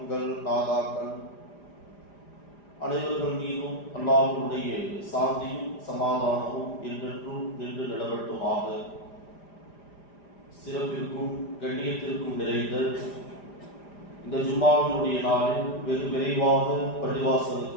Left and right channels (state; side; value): late; right; 5.0 ms